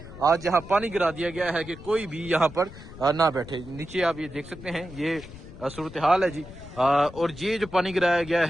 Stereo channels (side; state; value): left; noise; rumble, 16 dB below the sound